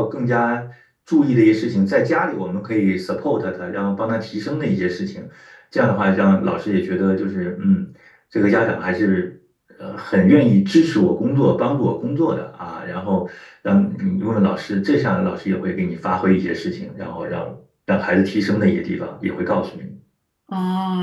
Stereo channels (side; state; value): both; identical; correlation 1.00